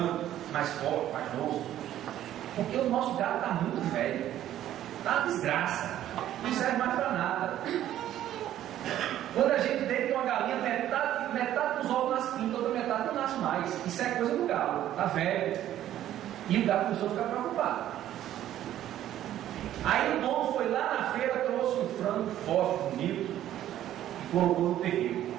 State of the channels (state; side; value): quieter; left; 12.3 dB